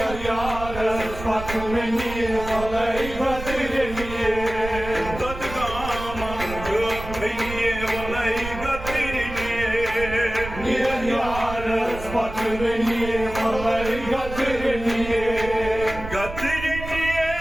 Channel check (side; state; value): right; noise; rumble, 10 dB below the sound